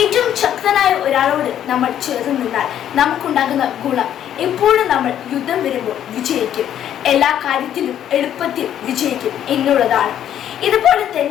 ശക്തനായ ഒരാളോട് നമ്മൾ ചേർന്ന് നിന്നാൽ നമുക്കുണ്ടാകുന്ന ഗുണം എപ്പോഴും നമ്മൾ യുദ്ധം വരുമ്പോൾ വിജയിക്കും, എല്ലാ കാര്യത്തിലും എളുപ്പത്തിൽ വിജയിക്കും എന്നുള്ളതാണ്. ഇതുപോലെ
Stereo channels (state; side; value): quieter; right; 10.5 dB